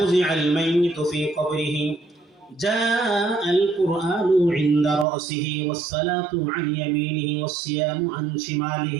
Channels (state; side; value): drops out; left; at 5.1 s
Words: মাইয়িতু ফি কবরিহি জাআল কুরআনু ইনদা রাসিহি ওয়াস সালাতু আন ইয়ামিনিহি ওয়াস সিয়ামু আন